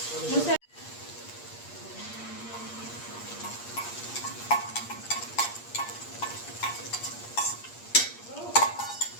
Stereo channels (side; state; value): right; late; 8.5 ms